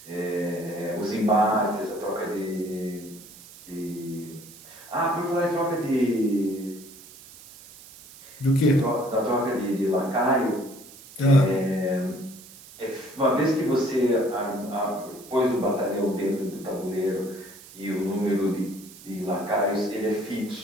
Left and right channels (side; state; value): right; noise; hiss, 19 dB below the sound